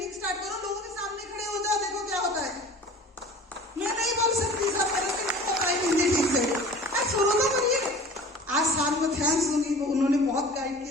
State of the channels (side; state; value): both; normal; correlation 0.43